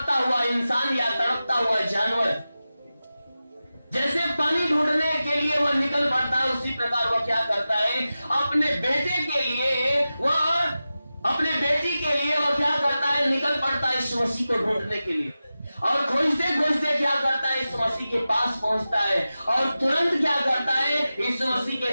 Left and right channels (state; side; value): inverted; both; correlation -0.94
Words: हुआ इंसान या तड़पता हुआ जानवर जैसे पानी ढूंढने के लिए वह निकल पड़ता है, उसी प्रकार वह क्या करता है? अपने बेटे के लिए वह क्या करता है? निकल पड़ता है यीशु मसीह को ढूंढने के लिए। और खोजते खोजते क्या करता है? यीशु मसीह के पास पहुंचता है और तुरंत क्या करता है? यीशु मसीह के